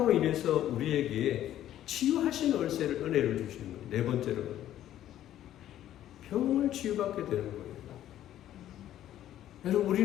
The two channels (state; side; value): quieter; right; 12.2 dB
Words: 인해서 우리에게 치유하신 은혜를 주시는 거예요. 네 번째로 병을 치유받게 되는 거예요. 여러분,